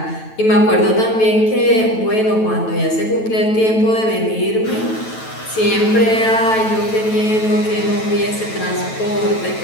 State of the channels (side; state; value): right; late; 9.1 ms